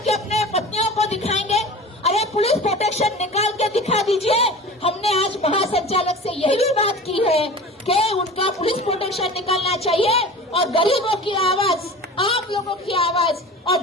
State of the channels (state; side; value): normal; both; correlation 0.37